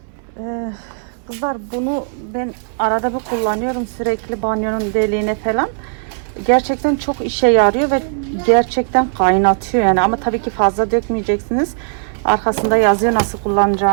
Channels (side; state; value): left; silent; 68 dB below the other